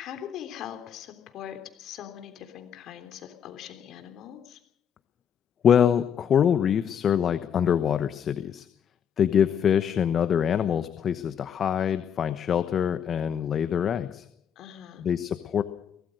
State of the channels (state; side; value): quieter; right; 8.4 dB